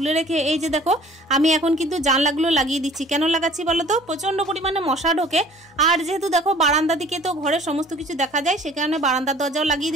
রেখে এই যে দেখো আমি এখন কিন্তু জানলাগুলো লাগিয়ে দিচ্ছি। কেন লাগাচ্ছি বলো তো? প্রচণ্ড পরিমাণে মশা ঢোকে, আর যেহেতু দেখো বারান্দা দিকে তো ঘরের সমস্ত কিছু দেখা যায়, সে কারণে বারান্দার দরজাও লাগিয়ে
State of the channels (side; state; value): both; normal; correlation 0.51